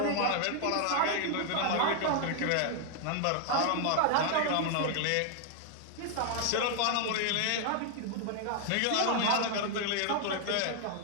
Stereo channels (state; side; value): different; both; correlation 0.00